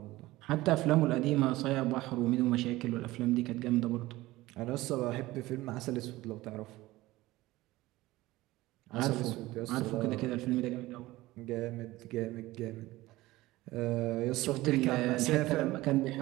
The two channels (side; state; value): left; quieter; 18.2 dB